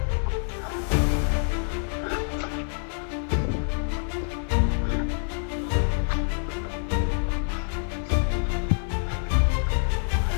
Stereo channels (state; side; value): silent; right; 61 dB below the other